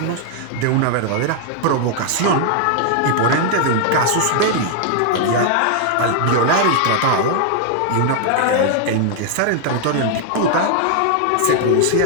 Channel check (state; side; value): different; both; correlation 0.00